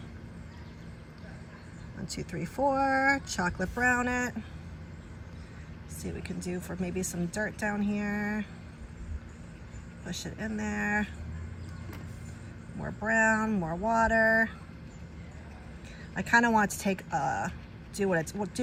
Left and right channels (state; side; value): identical; both; correlation 1.00